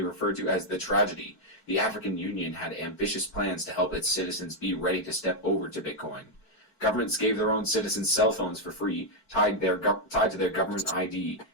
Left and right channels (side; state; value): right; late; 4.5 ms